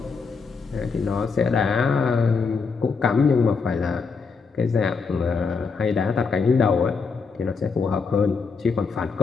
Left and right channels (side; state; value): right; quieter; 5.0 dB